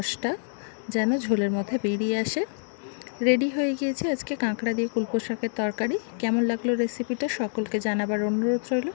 যেন ঝোলের মধ্যে বেরিয়ে আসে। রেডি হয়ে গিয়েছে আজকে কাঁকড়া দিয়ে কুলপো শাকের তরকারি। কেমন লাগলো রেসিপিটা সকলকে জানাবার অনুরোধ রইল।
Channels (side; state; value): right; silent; digital silence